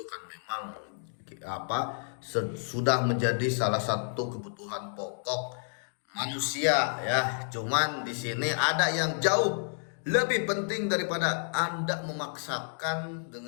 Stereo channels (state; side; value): silent; right; digital silence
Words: kan memang apa sudah menjadi salah satu kebutuhan pokok manusia ya. Cuman di sini ada yang jauh lebih penting daripada Anda memaksakan